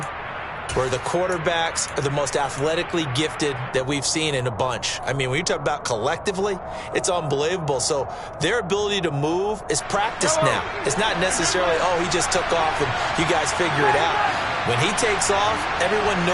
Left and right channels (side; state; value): both; identical; correlation 1.00